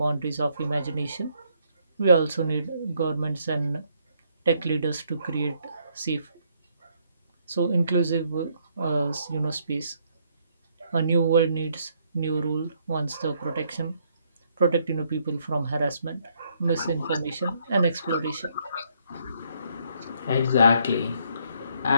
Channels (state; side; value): inverted; both; correlation -0.71